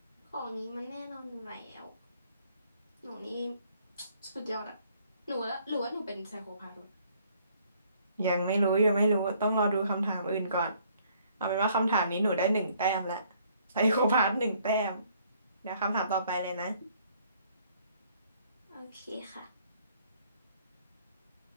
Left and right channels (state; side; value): inverted; both; correlation -0.63